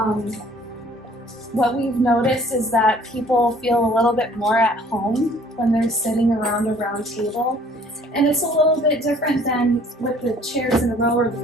What we've noticed is that people feel a little bit more at home when they're sitting around a round table. And it's a little bit different than with the chairs in a row or the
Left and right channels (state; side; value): normal; both; correlation 0.56